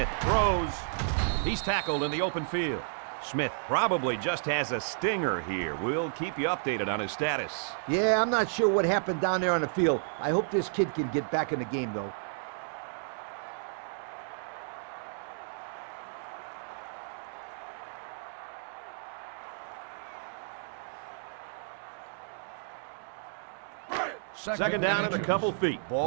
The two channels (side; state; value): left; silent; digital silence